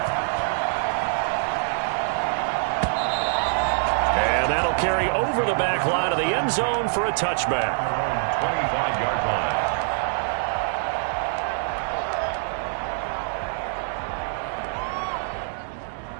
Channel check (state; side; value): silent; left; 62 dB below the other